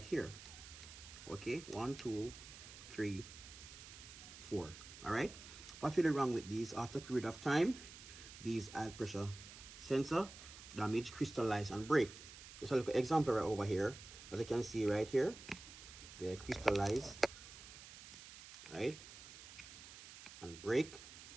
here. Okay, 1 2 3 4. All right, what's really wrong with these? After a period of time, these oil pressure sensor damage, crystallize, and break. Just a little example right over here. As you can see right here, they crystallize, right, and break,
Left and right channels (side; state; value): right; noise; hiss, 15 dB below the sound